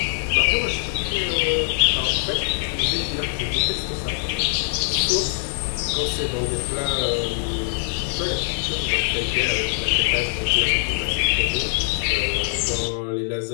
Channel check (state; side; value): silent; right; digital silence